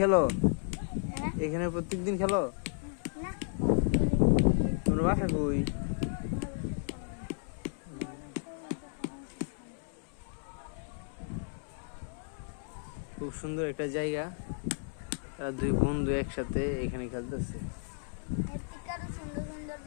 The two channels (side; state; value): right; silent; digital silence